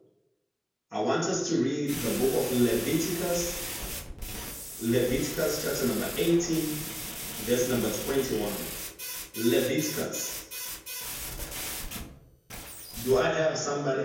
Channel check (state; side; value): identical; both; correlation 1.00